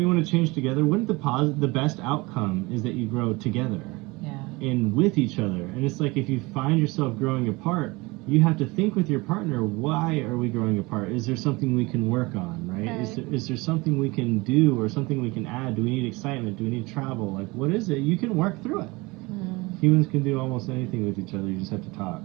you want to change together? Wouldn't the best outcome is that you grow together? Yeah. And with each other. And it's like if you find yourself growing apart, you have to think with your partner, why are we growing apart? Is there something we can work on, right? Is there something we can do or something we can add? Do we need excitement? Do we need travel? Like, what is it? You can work through it. Humans can do almost anything with each other. You just have to talk.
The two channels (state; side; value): quieter; left; 23.8 dB